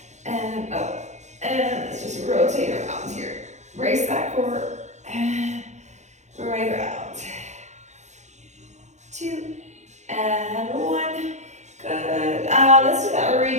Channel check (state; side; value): late; left; 0.34 ms